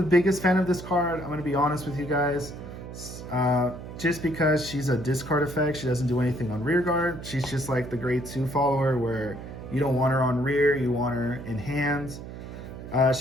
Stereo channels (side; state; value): right; noise; hum, 11 dB below the sound